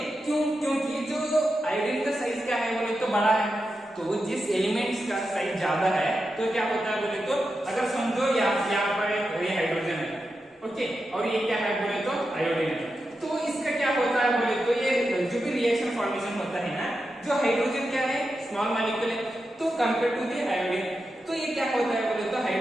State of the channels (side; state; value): both; normal; correlation 0.89